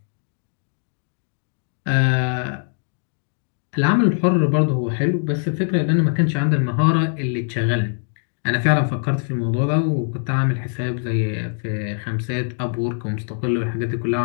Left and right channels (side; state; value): right; silent; digital silence